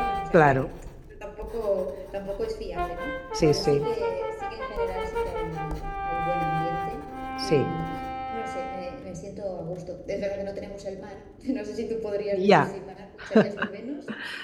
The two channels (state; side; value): identical; both; correlation 1.00